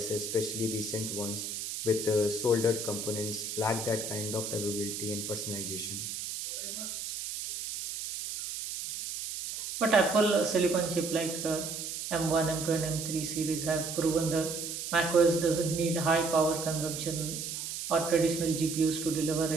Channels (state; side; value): noise; right; hiss, 6 dB below the sound